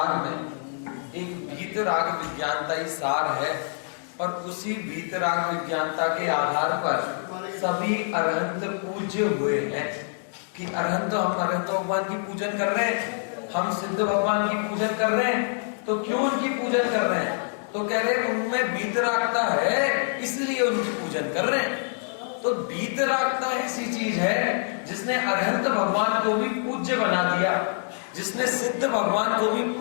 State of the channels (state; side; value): silent; right; 61 dB below the other